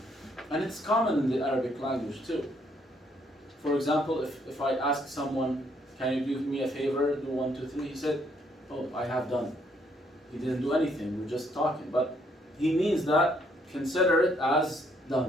And it's common in the Arabic language too. For example, if I ask someone, can you do me a favor, do 1, 2, 3, he said, oh, I have done. He didn't do anything, we're just talking. But he means that, consider it as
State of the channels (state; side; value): normal; both; correlation 0.70